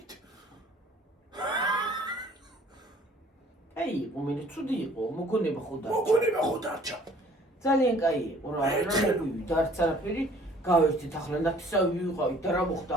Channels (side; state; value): both; normal; correlation 0.55